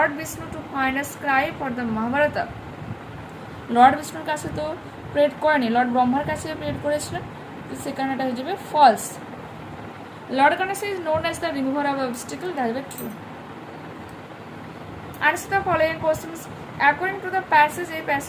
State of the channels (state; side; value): identical; both; correlation 1.00